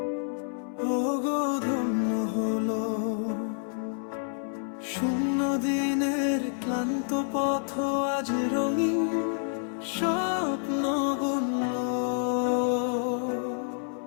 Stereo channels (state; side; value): silent; right; 59 dB below the other